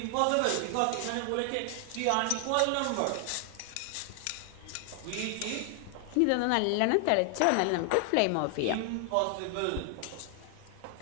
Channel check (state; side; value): different; both; correlation 0.00